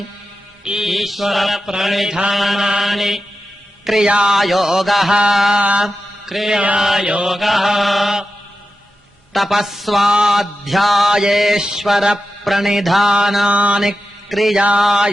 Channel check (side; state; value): both; normal; correlation 0.91